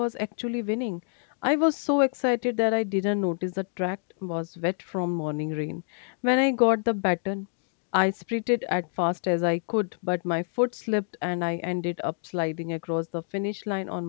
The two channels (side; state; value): right; silent; digital silence